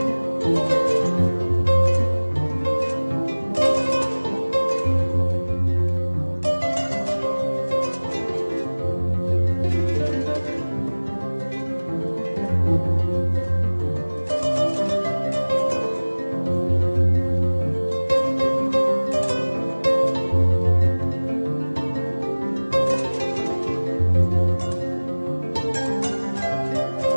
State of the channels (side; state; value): both; inverted; correlation -1.00